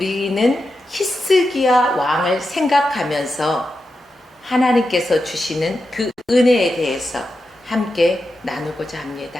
히스기야 왕을 생각하면서 하나님께서 주시는 그 은혜에 대해서 함께 나누고자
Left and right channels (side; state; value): both; normal; correlation 0.89